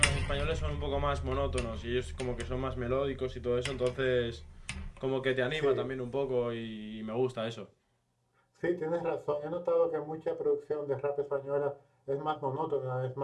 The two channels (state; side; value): identical; both; correlation 1.00